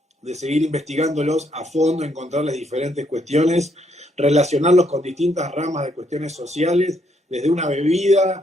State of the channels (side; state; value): both; normal; correlation 0.73